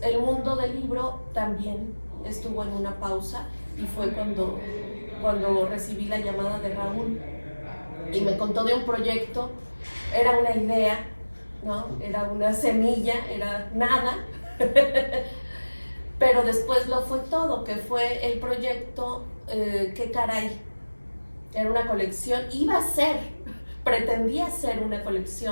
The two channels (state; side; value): inverted; both; correlation -1.00